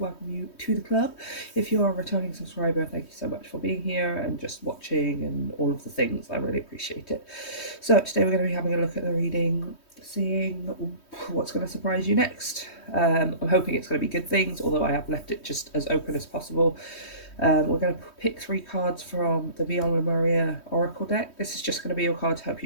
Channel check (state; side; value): late; right; 3.2 ms